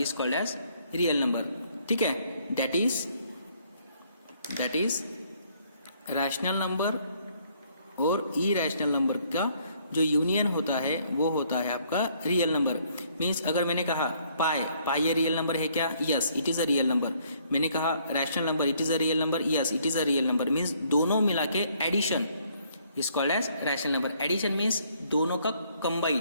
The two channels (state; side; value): inverted; both; correlation -0.65